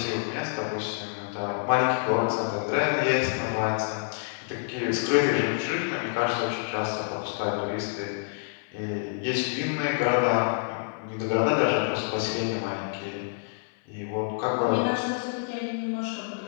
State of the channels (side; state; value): right; silent; 60 dB below the other